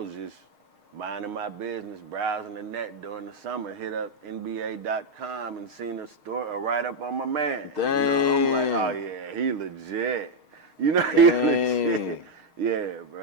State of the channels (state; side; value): late; left; 6.5 ms